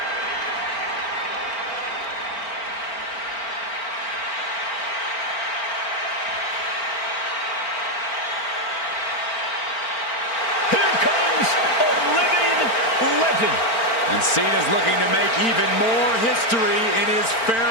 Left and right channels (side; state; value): right; late; 4.4 ms